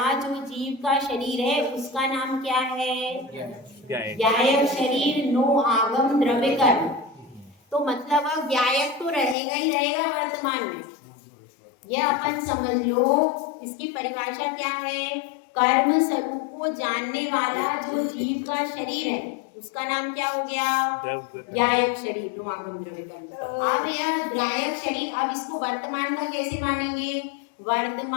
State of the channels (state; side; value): drops out; right; at 9.3 s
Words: जो जीव का शरीर है उसका नाम क्या है? ज्ञायक शरीर नो आगम द्रव्य कर्म। तो मतलब अब ज्ञायक तो रहेगा ही रहेगा वर्तमान में, यह अपन समझ लो। इसकी परिभाषा क्या है? कर्म स्वरूप को जानने वाला जो जीव का शरीर है उसका नाम क्या हो गया? ज्ञायक शरीर नो आगम द्रव्य कर्म। अब यह ज्ञायक शरीर, अब इसको वर्तमान का कैसे मानेंगे?